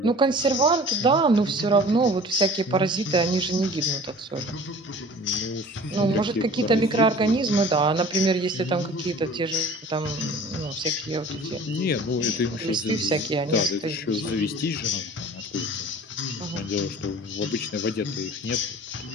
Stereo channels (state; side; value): normal; both; correlation 0.44